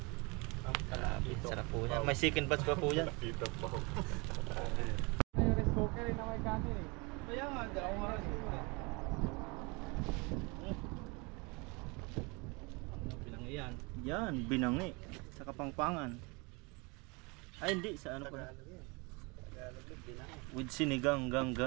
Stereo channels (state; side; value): quieter; left; 28.4 dB